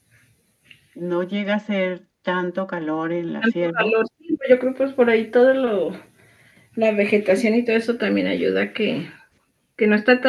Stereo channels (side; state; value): both; identical; correlation 1.00